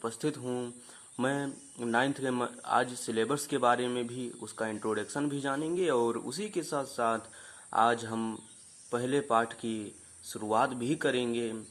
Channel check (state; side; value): identical; both; correlation 1.00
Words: हूं। मैं नाइन्थ के आज सिलेबस के बारे में भी उसका इंट्रोडक्शन भी जानेंगे और उसी के साथ साथ आज हम पहले पाठ की शुरुआत भी करेंगे।